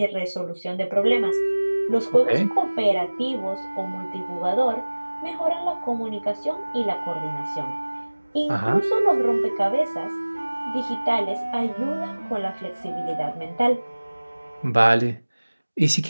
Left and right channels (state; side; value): inverted; both; correlation -1.00